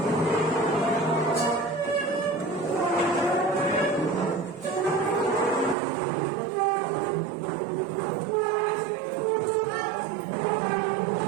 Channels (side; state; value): left; drops out; at 5.8 s